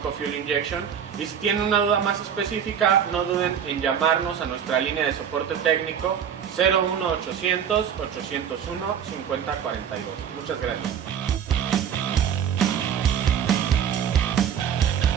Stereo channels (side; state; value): left; quieter; 8.3 dB